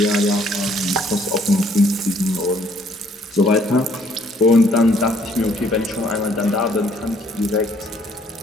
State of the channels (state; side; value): normal; both; correlation 0.63